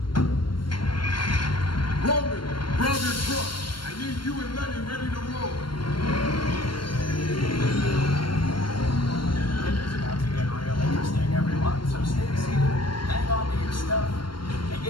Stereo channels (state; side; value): late; right; 0.72 ms